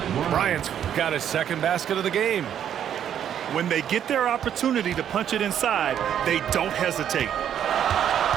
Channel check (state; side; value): quieter; left; 9.6 dB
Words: Bryant's got his second basket of the game. When they get their opportunity to punch it inside, they don't hesitate.